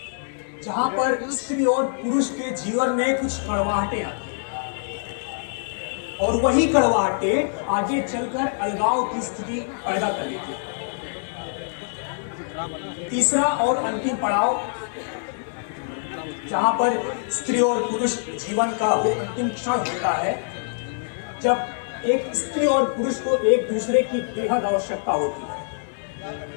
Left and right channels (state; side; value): silent; right; 62 dB below the other